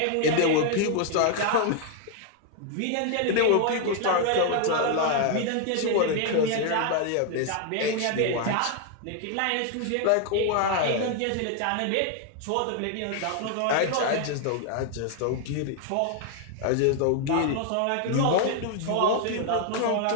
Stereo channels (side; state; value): both; different; correlation 0.00